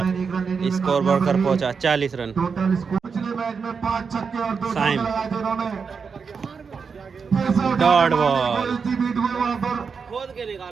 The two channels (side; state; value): left; quieter; 5.6 dB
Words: स्कोर बढ़कर पहुंचा 40 रन। टोटल स्कोर पिछले मैच में 5 छक्के और 2 चौके साइम। लगाए थे उन्होंने। डॉट बॉल, खोद के